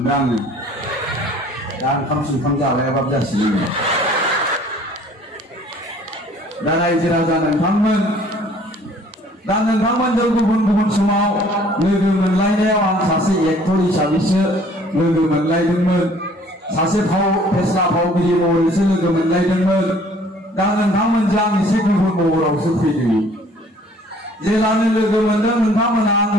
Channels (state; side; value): normal; both; correlation 0.55